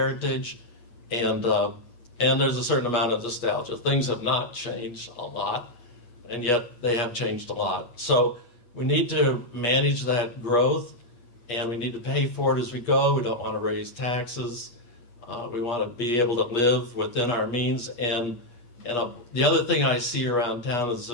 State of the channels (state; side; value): late; right; 8.4 ms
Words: and there's a certain amount of nostalgia. Things have not changed a lot, and yet they have changed a lot. So we need to manage that growth, and we need to pay for it as we go. We don't want to raise taxes. We want to be able to live within our means. And the other thing I see around town is